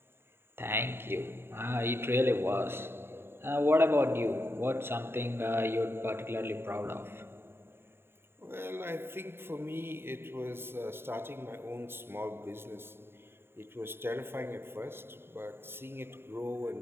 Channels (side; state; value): left; late; 0.11 ms